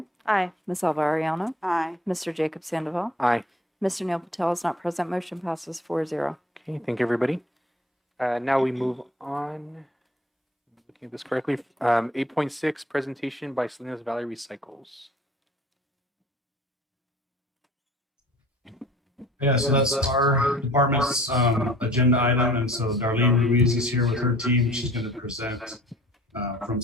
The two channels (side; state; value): both; normal; correlation 0.50